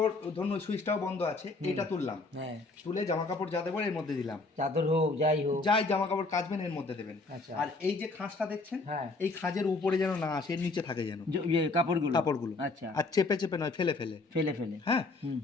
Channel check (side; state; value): right; quieter; 3.5 dB